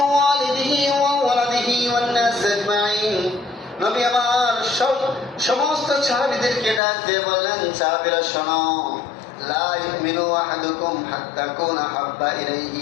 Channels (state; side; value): drops out; right; at 6.8 s